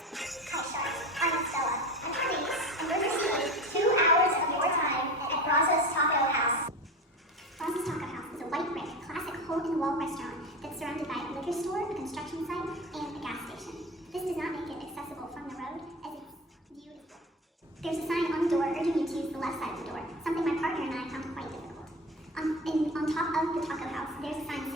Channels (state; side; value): normal; both; correlation 0.29